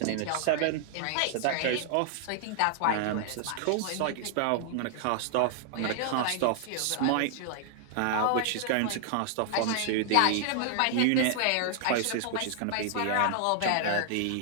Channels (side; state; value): both; different; correlation 0.00